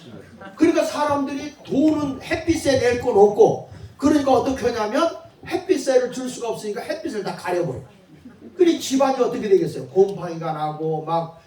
그러니까 사람들이 돈은 햇빛세 낼 건 없고 그러니까 어떻게 하냐면 햇빛세를 줄 수가 없으니까 햇빛을 다 가려버려. 그러니 집안이 어떻게 되겠어요? 곰팡이가 나고 막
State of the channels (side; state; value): both; identical; correlation 1.00